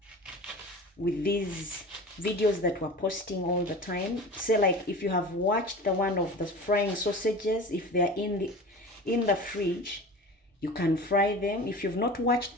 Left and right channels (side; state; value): both; normal; correlation 0.35